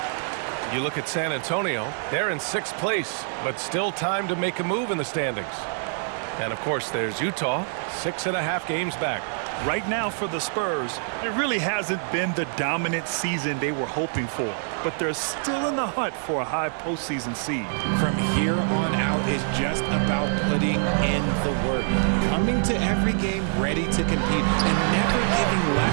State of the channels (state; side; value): silent; left; 61 dB below the other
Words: You look at San Antonio, they're in 6th place, but still time to make a move in the standings. And of course, there's Utah, 6.5 games back. Right now for the Spurs, it really hasn't been the dominant season they were hoping for, but they're still in the hunt for a high postseason seed. From here on out is just about putting in the work, coming to every game ready to compete, and never giving